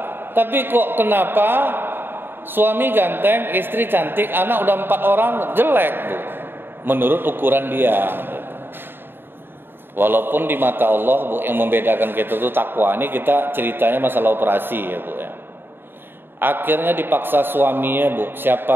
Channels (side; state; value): left; late; 0.10 ms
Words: Tapi kok kenapa suami ganteng, istri cantik, anak udah 4 orang jelek Bu, menurut ukuran dia. Walaupun di mata Allah Bu, yang membedakan kita itu takwa. Ini kita ceritanya masalah operasi ya Bu ya. Akhirnya dipaksa suaminya Bu,